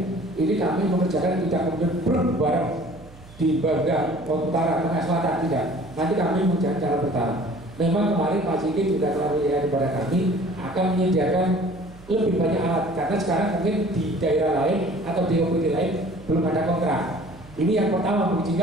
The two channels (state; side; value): noise; right; hum, 21 dB below the sound